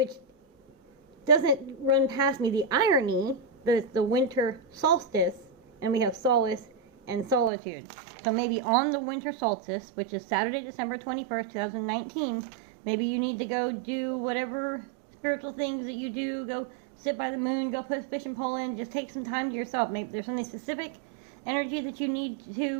doesn't run past me. The irony that it's the winter solstice, and we have solace and solitude. So maybe on the winter solstice, which is Saturday, December 21st, 2019, maybe you need to go do whatever spiritual things that you do. Go sit by the moon, go put a fishing pole in, just take some time to yourself. Maybe there's something specific energy that you need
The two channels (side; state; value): left; drops out; at 7.5 s